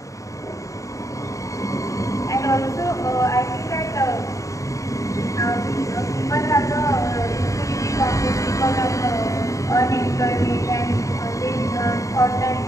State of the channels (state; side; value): late; right; 0.16 ms